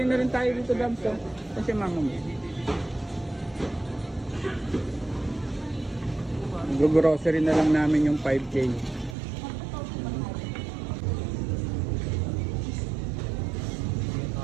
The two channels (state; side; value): drops out; left; at 9.2 s